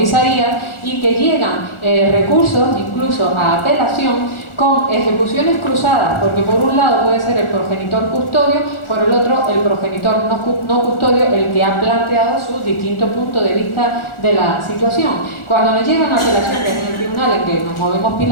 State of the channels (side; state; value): right; late; 1.4 ms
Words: y que llegan recursos incluso a apelación con ejecuciones cruzadas, porque por un lado puede ser el progenitor custodio, por el otro el progenitor no custodio, el que ha planteado su distinto punto de vista de la situación. Cuando nos llegan apelaciones en el tribunal en que nos movemos